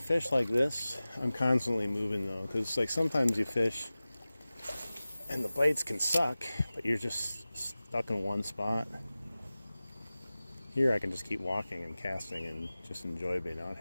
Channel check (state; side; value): inverted; both; correlation -0.97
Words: like this, I'm constantly moving though, because like sometimes you fish and the bites can suck, but you're just stuck in one spot. Here I can just keep walking and casting and just enjoy being out